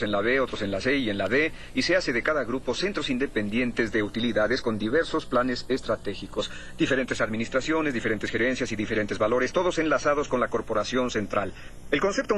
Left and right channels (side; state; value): both; identical; correlation 1.00